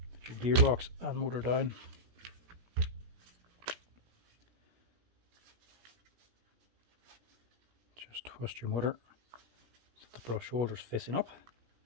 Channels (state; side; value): late; left; 17 ms